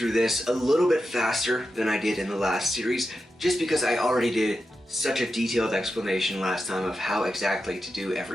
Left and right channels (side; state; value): both; normal; correlation 0.89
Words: this a little bit faster than I did in the last series, just because I already did such a detailed explanation last time of how exactly to do